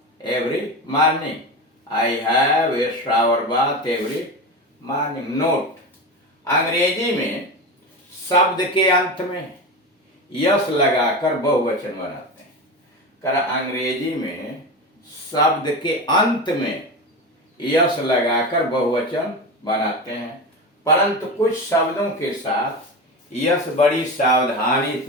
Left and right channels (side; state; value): both; normal; correlation 0.23